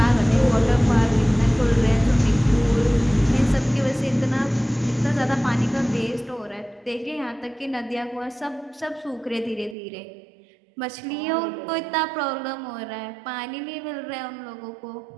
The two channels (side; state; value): left; drops out; at 9.8 s